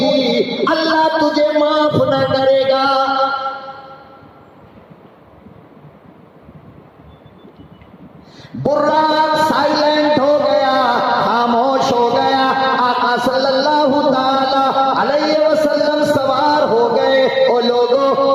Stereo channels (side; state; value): both; identical; correlation 1.00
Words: अल्लाह तुझे माफ न करेगा। बुर्राक साइलेंट हो गया, खामोश हो गया। आका सल्लल्लाहु ताला अलैहि वसल्लम सवार हो गए। ओ